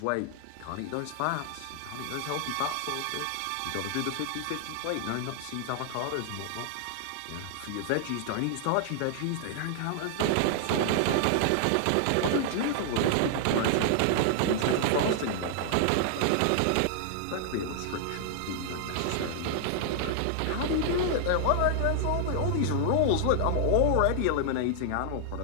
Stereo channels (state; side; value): different; both; correlation -0.01